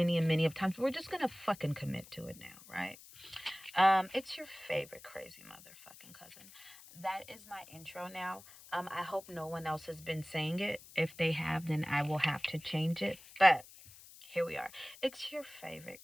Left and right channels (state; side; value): noise; left; hiss, 19 dB below the sound